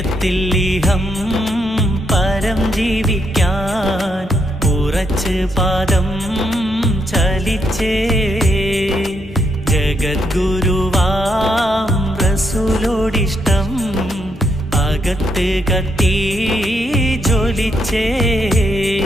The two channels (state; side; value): normal; both; correlation 0.77